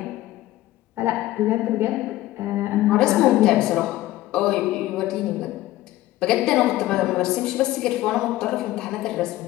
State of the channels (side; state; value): right; quieter; 16.0 dB